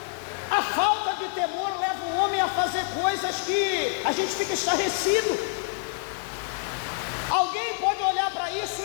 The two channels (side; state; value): right; silent; digital silence